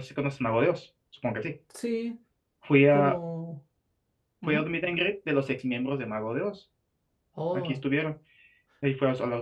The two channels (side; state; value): both; identical; correlation 1.00